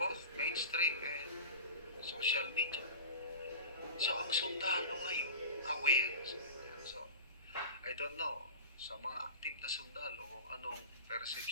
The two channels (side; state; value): both; inverted; correlation -0.33